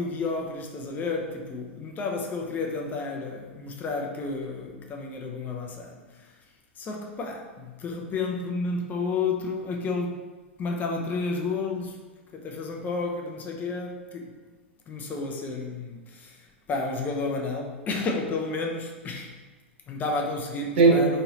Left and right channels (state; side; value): normal; both; correlation 0.09